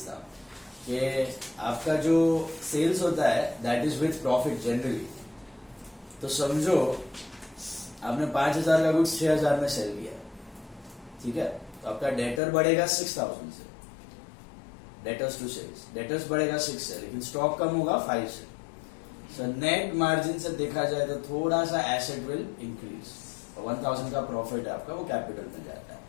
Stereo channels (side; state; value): right; drops out; at 12.4 s